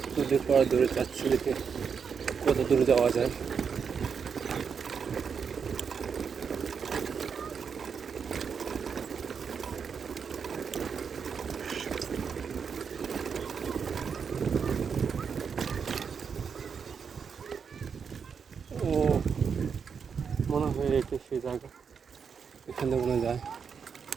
নদীর পর দূরে যাচ্ছি, দেখে কত দূরে যাওয়া যায়। ও মনে হয় এটা সেই জায়গা, এখানে মনে যায়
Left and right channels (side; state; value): left; quieter; 6.4 dB